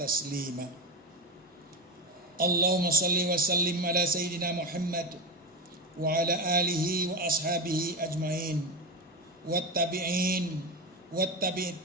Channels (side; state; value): both; normal; correlation 0.20